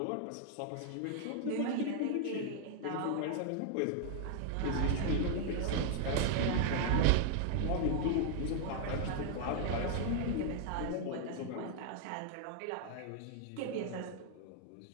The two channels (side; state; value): both; different; correlation 0.00